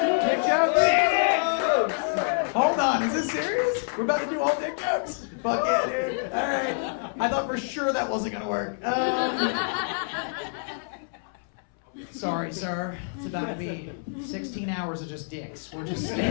jokes? Hold on, is this serious? We're about to do all dick jokes? Fuck yeah, dude. All right. I thought for sure that wasn't going to work. Sorry, sir. It's about to be 16 hours of just dicks. We're just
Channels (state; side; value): silent; right; 60 dB below the other